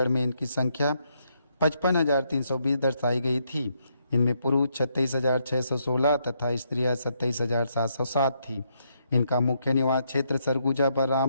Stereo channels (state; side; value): inverted; both; correlation -0.76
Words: में इनकी संख्या 55,320 दर्शाई गई थी। इनमें पुरुष 36,616 तथा स्त्रियां 27,707 थी। इनका मुख्य निवास क्षेत्र सरगुजा,